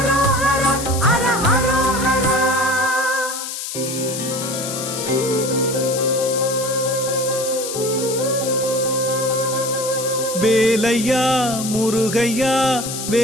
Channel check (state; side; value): noise; left; hiss, 6 dB below the sound